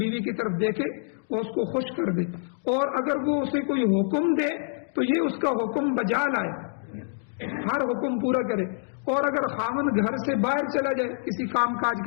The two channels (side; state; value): right; silent; digital silence